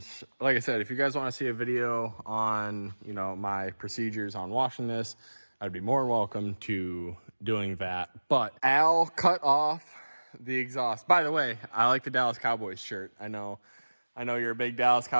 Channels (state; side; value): inverted; both; correlation -1.00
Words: like I said, if you guys want to see a video on, you know, my procedures on washing this, I'd be more than welcome to doing that. But Al cut off the exhaust. By the way, I like the Dallas Cowboys shirt. I know you're a big Dallas